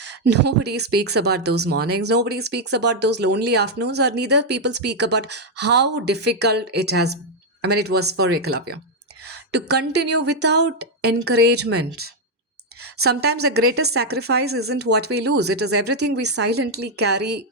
Nobody speaks about those mornings, nobody speaks about those lonely afternoons, or neither people speak about how difficult it was for Eklavya to continue without encouragement. Sometimes the greatest sacrifice isn't what we lose, it is everything we silently carry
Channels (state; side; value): normal; both; correlation 0.01